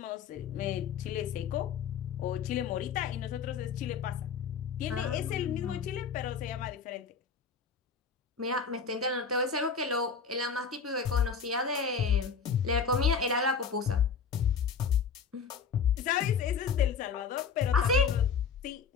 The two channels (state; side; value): quieter; right; 6.0 dB